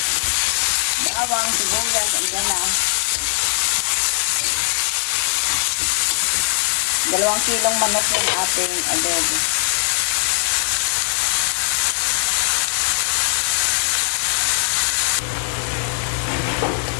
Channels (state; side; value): silent; right; 66 dB below the other